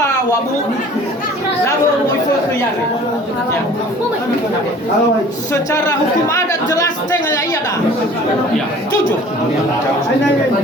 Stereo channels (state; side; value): normal; both; correlation 0.48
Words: wabu, lalu itu kejari. Secara hukum adat jelas tengah iya dah. Jujur.